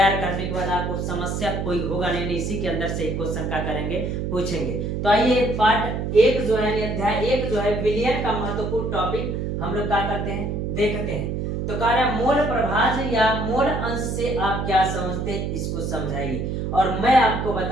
करने के बाद आपको समस्या कोई होगा नहीं, इसी के अंदर से ही क्वेश्चन क्या करेंगे, पूछेंगे। तो आइए पार्ट 1 जो है, अध्याय 1 जो है विलयन का महत्वपूर्ण टॉपिक हम लोग क्या करते हैं, देखते हैं। तो कह रहा है मोल प्रभाज या मोल अंश से आप क्या समझते हैं, इसको समझाइए। और मैं आपको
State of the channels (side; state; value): right; noise; hum, 2 dB below the sound